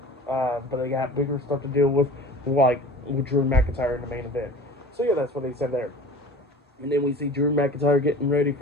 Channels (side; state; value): both; normal; correlation 0.41